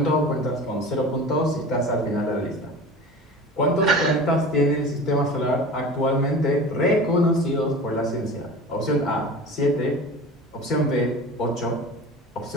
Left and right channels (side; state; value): both; normal; correlation 0.36